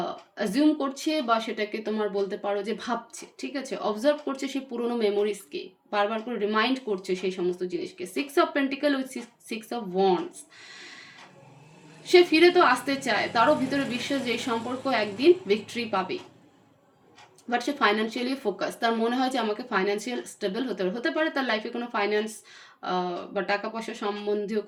অ্যাজিউম করছে, বা সেটাকে তোমার বলতে পারো যে ভাবছে। ঠিক আছে, অবজার্ভ করছে সেই পুরোনো মেমোরিজকে, বারবার করে রিমাইন্ড করছে সেই সমস্ত জিনিসকে। 6 of pentacle with 6 of wands, সে ফিরে তো আসতে চায়, তারও ভিতরে বিশ্বাস যে এই সম্পর্ক একদিন ভিক্টরি পাবে। বাট সে ফাইন্যান্সিয়ালি ফোকাস, তার মনে হয় যে আমাকে ফাইন্যান্সিয়াল স্টেবল হতে পারে তার লাইফে কোনো ফাইন্যান্স বা টাকা পয়সা সম্বন্ধীয়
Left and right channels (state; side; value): identical; both; correlation 1.00